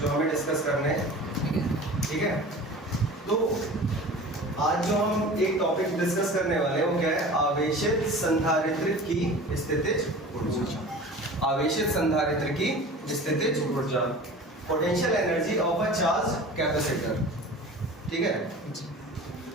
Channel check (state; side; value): normal; both; correlation 0.39